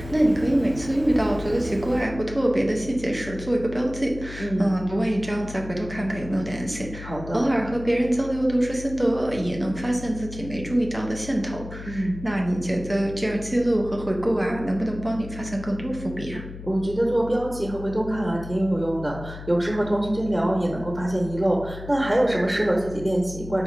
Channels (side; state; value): left; noise; hum, 12 dB below the sound